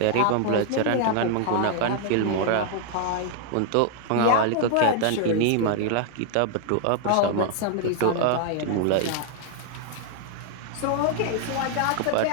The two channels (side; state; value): both; different; correlation 0.00